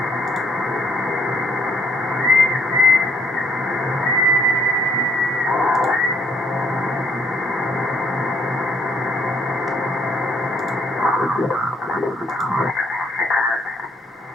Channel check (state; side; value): normal; both; correlation 0.67